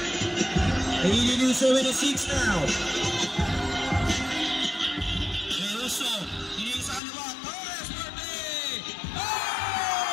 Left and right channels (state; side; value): drops out; right; at 7.0 s